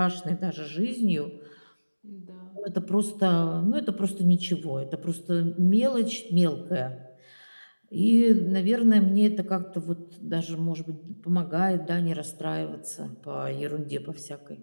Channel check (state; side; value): inverted; both; correlation -1.00